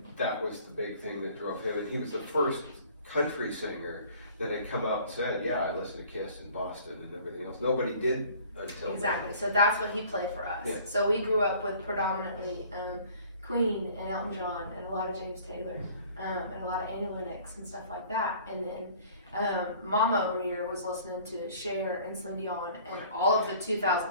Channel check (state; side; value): inverted; both; correlation -0.51